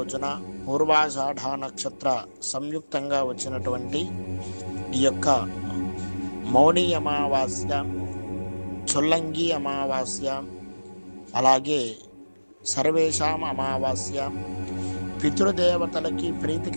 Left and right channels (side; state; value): both; inverted; correlation -1.00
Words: పూర్వాషాఢ నక్షత్ర సంయుక్తంగా వచ్చినటువంటి ఈ యొక్క మౌని అమావాస్య, చొల్లంగి అమావాస్య, అలాగే సర్వేషాం అమావాస్య, పితృదేవతలకి